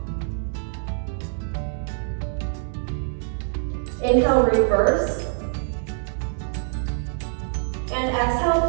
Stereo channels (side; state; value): left; silent; digital silence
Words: Inhale, reverse. And